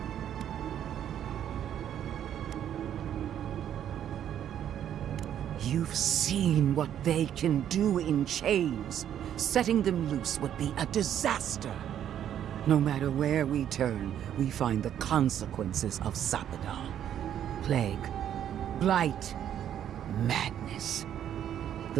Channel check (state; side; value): quieter; left; 10.1 dB